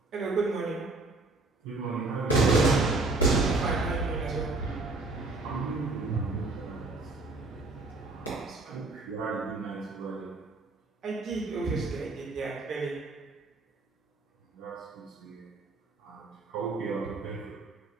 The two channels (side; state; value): left; quieter; 3.3 dB